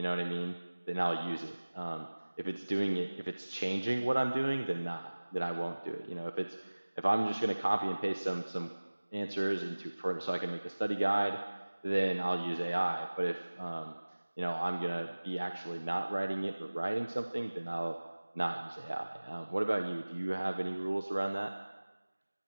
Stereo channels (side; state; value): both; inverted; correlation -1.00